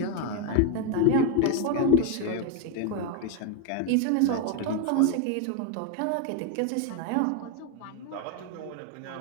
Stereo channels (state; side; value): different; both; correlation 0.01